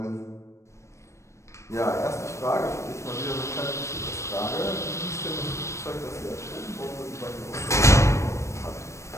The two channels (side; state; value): right; late; 0.14 ms